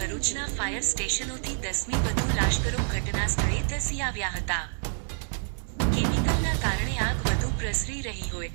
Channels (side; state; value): left; silent; 60 dB below the other